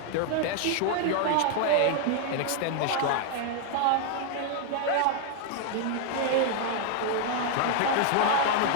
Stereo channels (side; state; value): both; different; correlation 0.00